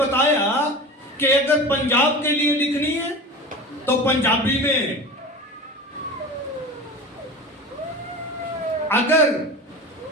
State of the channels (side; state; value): both; normal; correlation 0.32